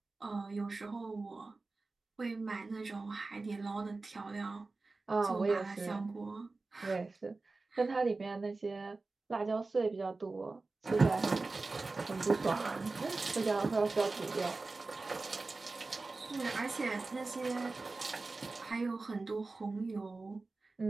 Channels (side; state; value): left; quieter; 3.6 dB